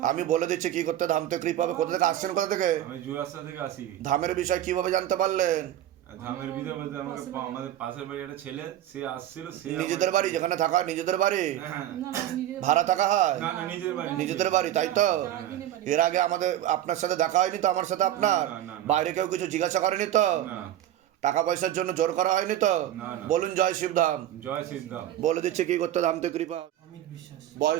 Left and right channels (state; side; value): quieter; left; 12.3 dB